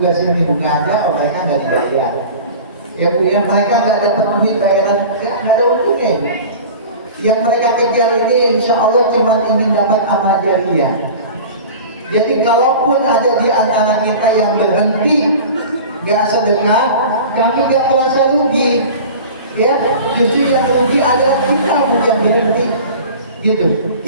ini, nggak ada, mereka nggak dibayar. Ya Bu, ya mereka nggak dapat duit bayaran, nggak ada untungnya. Bu. Yang mereka kejar ini insya Allah cuma ingin dapat amal jariah. Jadi kalaupun ada di antara kita yang berhenti nggak sedekah, kami nggak merasa rugi. Ya, justru yang rugi adalah kita Bu yang berhenti. Gitu,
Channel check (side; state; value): both; inverted; correlation -0.38